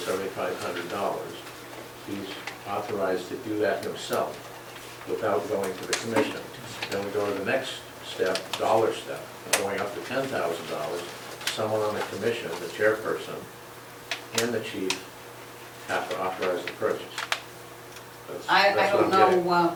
he's authorized to do that himself without going to the commission. Then we go to the next step, dollar step, going up to $10,000. Someone on the commission, the chairperson, and the chief have to authorize the purchase. I That's what don't I'm getting. know,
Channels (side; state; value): both; identical; correlation 1.00